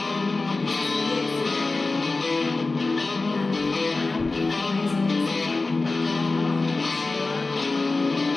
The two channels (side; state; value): right; quieter; 3.5 dB